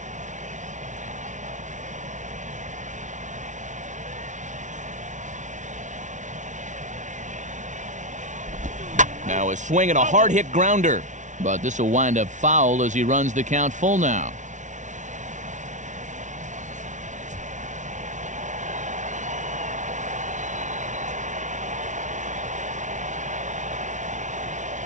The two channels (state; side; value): late; left; 0.36 ms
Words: Now a swing and a hard-hit grounder. But this will wind up foul as he runs the count full now.